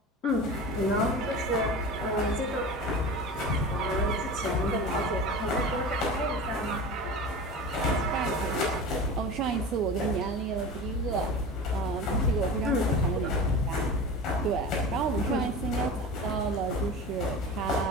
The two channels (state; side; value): normal; both; correlation 0.32